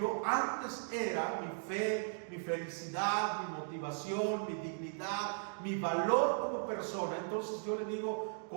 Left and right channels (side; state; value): left; silent; digital silence